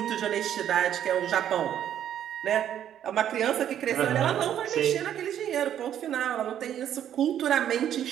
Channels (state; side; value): quieter; left; 10.3 dB